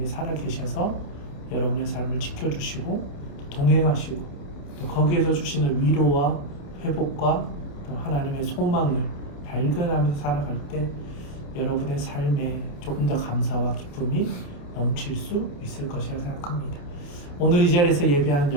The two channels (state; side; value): late; right; 28 ms